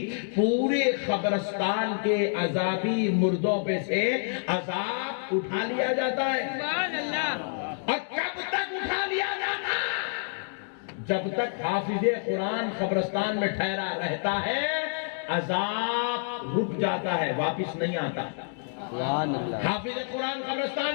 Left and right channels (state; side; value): silent; right; digital silence